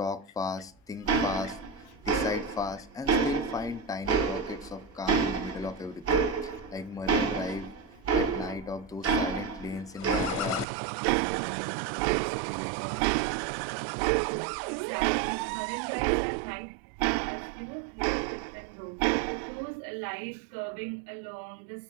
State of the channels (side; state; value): left; drops out; at 10.7 s